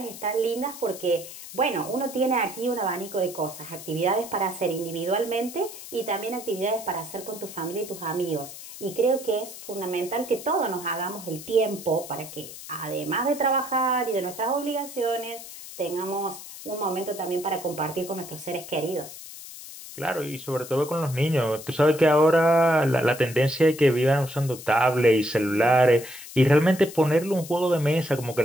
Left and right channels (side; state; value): left; noise; hiss, 14 dB below the sound